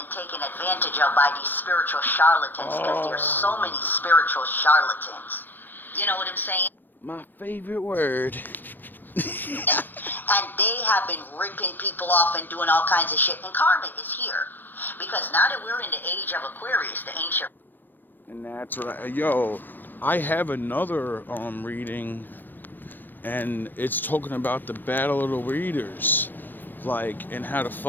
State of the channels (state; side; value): late; right; 0.092 ms